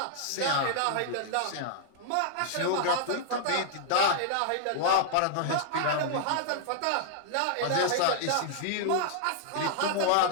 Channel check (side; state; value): both; different; correlation -0.01